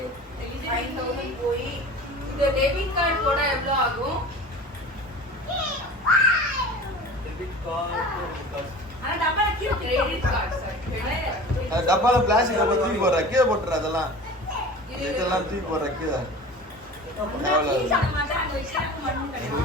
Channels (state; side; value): normal; both; correlation 0.38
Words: 5000 போய் இந்த டெபிட் கார்டு போட எவ்வளவு ஆகும்? ஆனா டப்பால கீழ கிரெடிட் கார்டு சார். டப்பால பிளாஸ்டிக் டப்பா தூக்கி போடுற கீழே போட்டுற. அதெல்லாம் இதெல்லாம் தூக்கி போடுற கீழே.